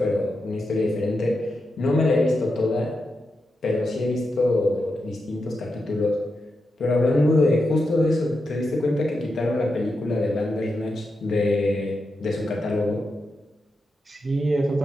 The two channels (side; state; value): both; normal; correlation 0.87